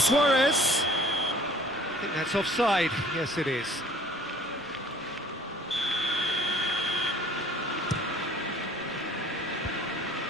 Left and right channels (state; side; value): noise; right; rumble, 29 dB below the sound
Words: I think that's offside. Yes, it is.